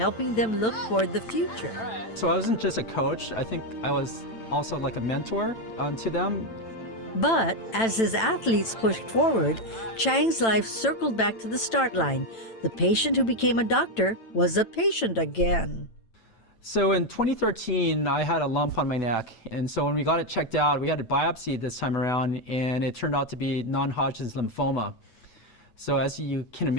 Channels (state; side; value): late; right; 9.0 ms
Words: them look toward the future. So I wasn't just a coach, I think I was also like a mentor to them. But as his athletes pushed forward, Chang's life circled back to the start line. The patient who became a doctor was a patient again. So in 2013, I had a lump on my neck. And so when we got it checked out, we had a biopsy this time around, and it turned out to be non-Hodgkin's lymphoma. So as you can